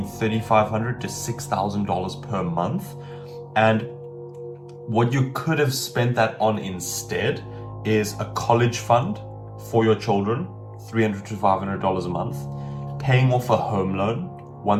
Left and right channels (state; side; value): identical; both; correlation 1.00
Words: $3,500 to $6,000 per month. And what you could have spent that on instead is a college fund for your children, $300 to $500 a month, paying off a home loan,